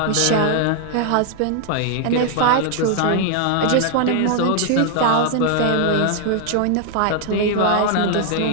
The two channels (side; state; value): both; different; correlation 0.00